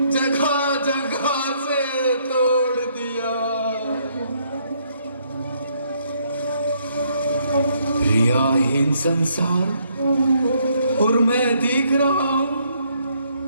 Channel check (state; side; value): inverted; both; correlation -0.70